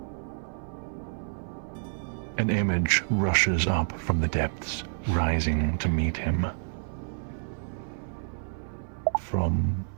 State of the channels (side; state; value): left; silent; 59 dB below the other